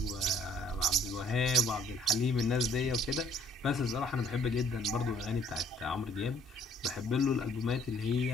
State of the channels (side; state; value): both; normal; correlation 0.59